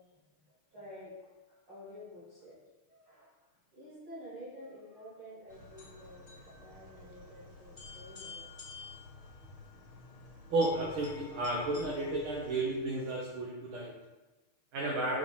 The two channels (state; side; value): late; left; 6.5 ms